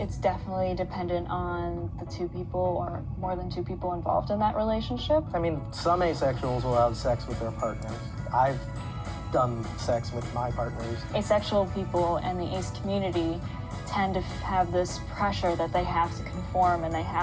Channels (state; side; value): identical; both; correlation 1.00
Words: definitely dependent on the two people or more than two people involved in that relationship. I mean, some asexuals will have sex with their partners. I've done sex with my partners. Asexual people and the ace community tend to have this pressure that they have to conform and they